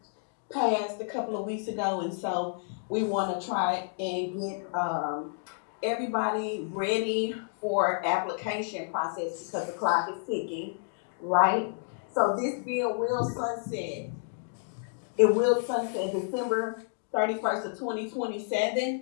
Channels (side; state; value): right; silent; digital silence